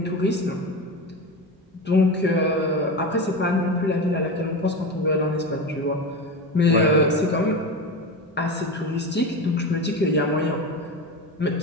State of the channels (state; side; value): normal; both; correlation 0.22